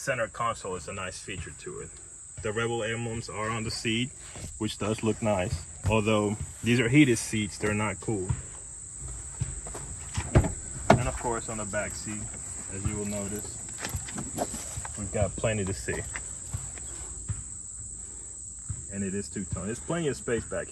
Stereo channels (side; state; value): both; identical; correlation 1.00